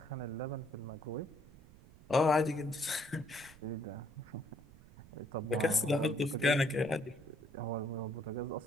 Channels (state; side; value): noise; right; rumble, 21 dB below the sound